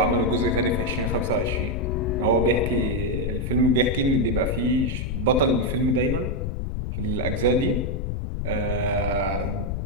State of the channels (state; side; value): noise; left; rumble, 2 dB below the sound